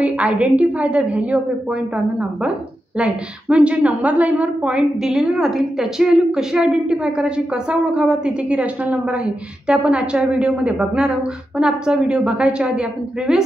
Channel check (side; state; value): both; normal; correlation 0.88